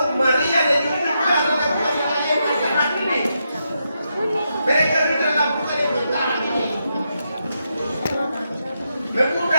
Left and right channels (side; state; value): both; inverted; correlation -0.83